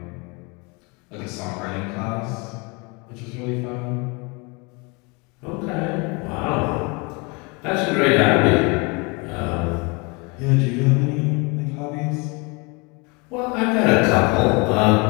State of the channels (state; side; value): quieter; right; 29.3 dB